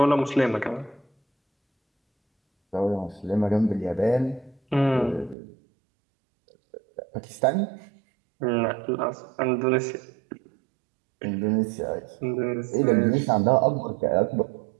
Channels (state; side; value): drops out; left; at 5.4 s